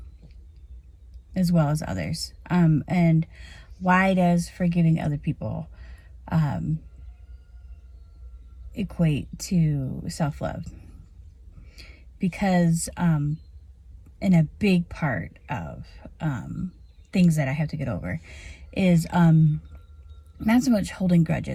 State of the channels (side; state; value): both; identical; correlation 1.00